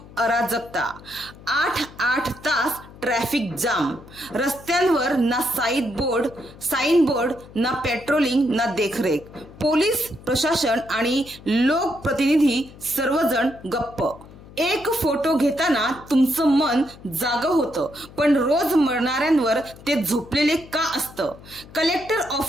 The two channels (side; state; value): left; noise; hum, 20 dB below the sound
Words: अराजकता, 8 तास ट्रॅफिक जाम, रस्त्यांवर ना साइन बोर्ड, ना पेट्रोलिंग, ना देखरेख, पोलीस प्रशासन आणि लोकप्रतिनिधी सर्वजण गप्प। एक फोटो घेताना तुमचं मन जागं होतं, पण रोज मरणाऱ्यांवर ते झोपलेले का असतं? कलेक्टर